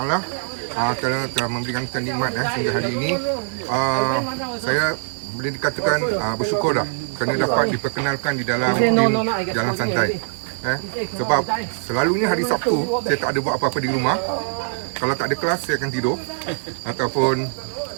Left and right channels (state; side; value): silent; left; digital silence